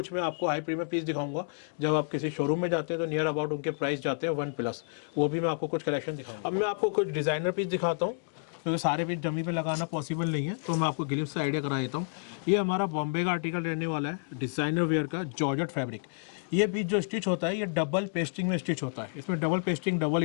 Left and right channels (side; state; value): right; silent; digital silence